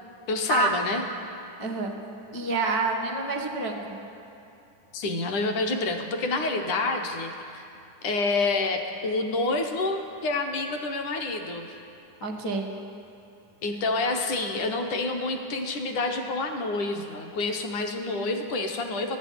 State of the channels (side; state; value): right; late; 10 ms